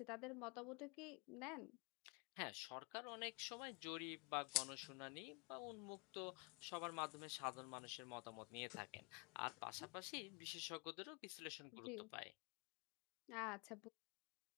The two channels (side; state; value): right; quieter; 30.0 dB